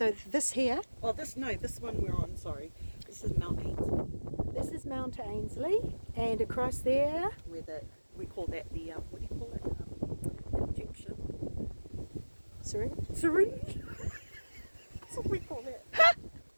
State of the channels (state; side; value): inverted; both; correlation -1.00